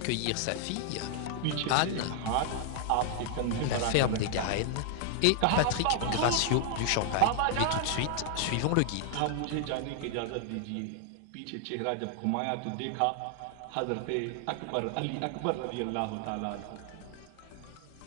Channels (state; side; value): different; both; correlation 0.00